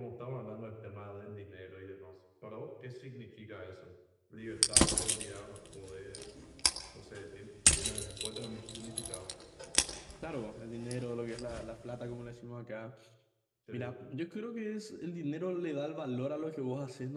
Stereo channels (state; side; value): identical; both; correlation 1.00